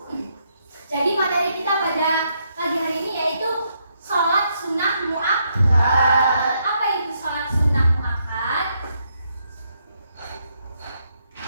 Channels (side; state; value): both; inverted; correlation -0.76